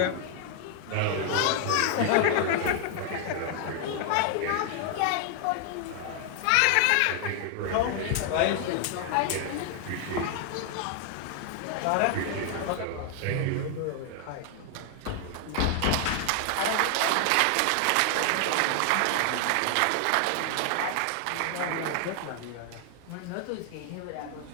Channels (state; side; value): different; both; correlation 0.00